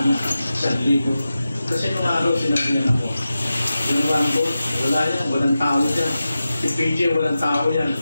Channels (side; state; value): both; inverted; correlation -0.93